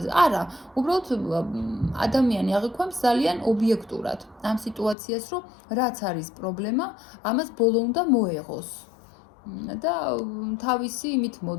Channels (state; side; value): drops out; right; at 5.0 s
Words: არა, უბრალოდ ადამიანი აღიქვამს ძალიან ობიექტურად ამ სიტუაციას, რომ რაც არის პრობლემა, ამას ბოლო უნდა მოეღოს. და თავისი იმით